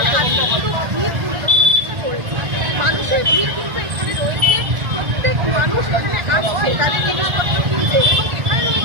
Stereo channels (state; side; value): late; left; 1.4 ms